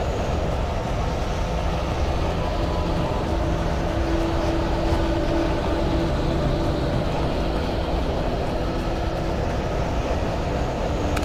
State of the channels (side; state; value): both; identical; correlation 1.00